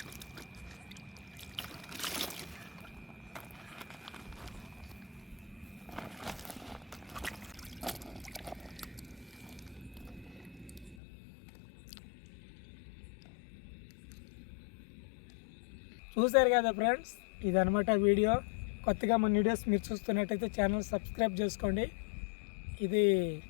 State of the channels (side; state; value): right; drops out; at 11.0 s